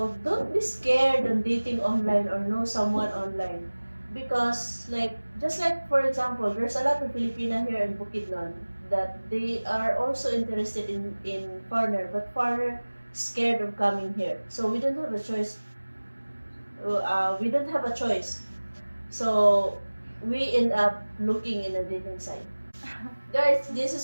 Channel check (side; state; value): both; inverted; correlation -1.00